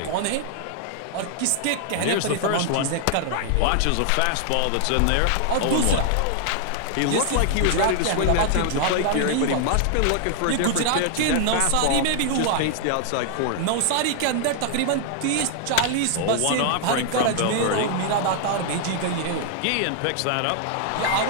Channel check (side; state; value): both; different; correlation 0.00